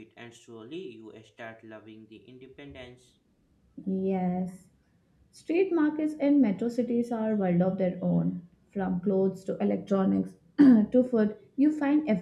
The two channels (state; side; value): identical; both; correlation 1.00